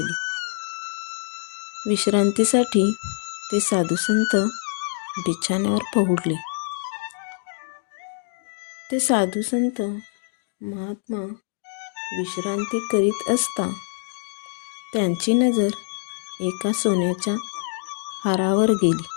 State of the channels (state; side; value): silent; right; digital silence